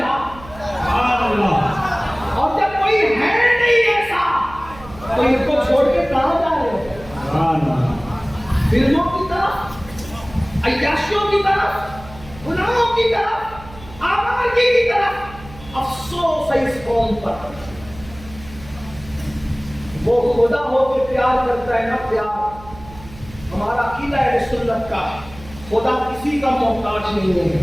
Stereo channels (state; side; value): noise; right; hum, 18 dB below the sound